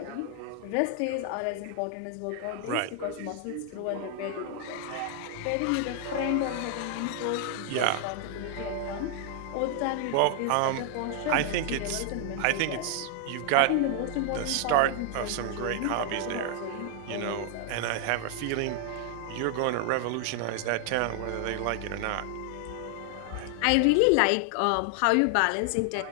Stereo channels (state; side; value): different; both; correlation 0.00